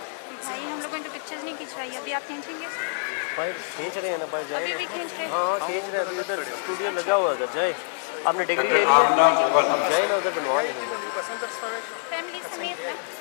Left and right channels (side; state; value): right; silent; 61 dB below the other